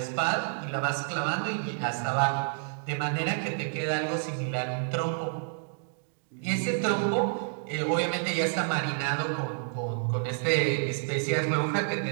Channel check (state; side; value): silent; left; 58 dB below the other